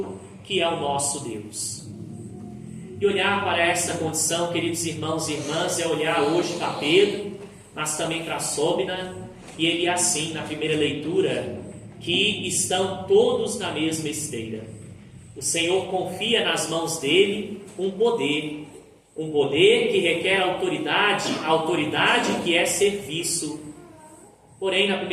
que é o nosso Deus. E olhar para essa condição, queridos irmãos e irmãs, é olhar hoje para Pedro, mas também para Sóbina, e ele assim, na primeira leitura, que estão todos na mesma esteira. O Senhor confia nas mãos dele um poder que requer autoridade que é serviço. Porém, na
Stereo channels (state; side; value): identical; both; correlation 1.00